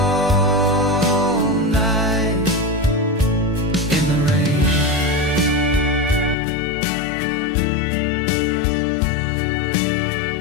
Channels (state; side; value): drops out; right; at 6.4 s